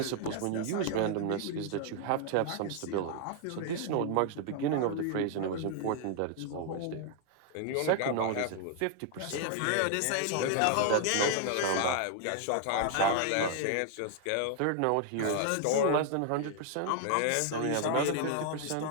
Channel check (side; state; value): both; different; correlation 0.00